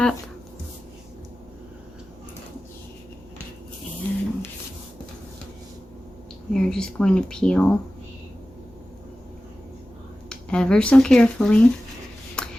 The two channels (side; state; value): both; normal; correlation 0.95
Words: And you're just going to peel ever so carefully.